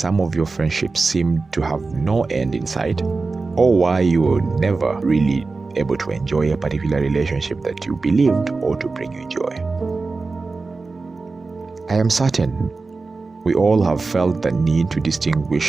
of your friendships seem to have no end in sight, or why you were never really able to enjoy a particular relationship that you believed ought to bring you joy? I am certain we all have felt the need to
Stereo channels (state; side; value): quieter; left; 3.9 dB